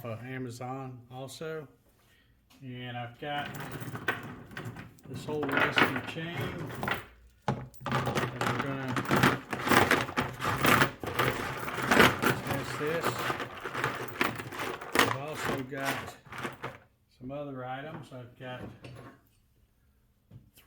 of Amazon also. And I've got this whole rusty chain that we're gonna test this. I've also got some other items. I've got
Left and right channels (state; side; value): identical; both; correlation 1.00